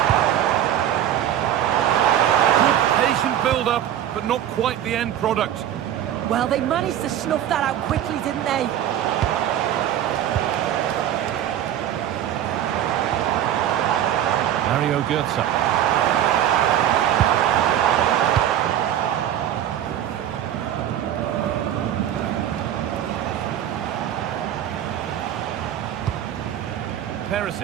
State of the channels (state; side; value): quieter; left; 11.0 dB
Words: Up, but not quite the end product. Well, they managed to snuff that out quickly, didn't they? Mario Götze.